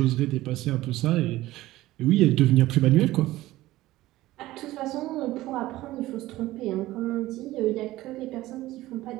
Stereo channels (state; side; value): quieter; left; 16.8 dB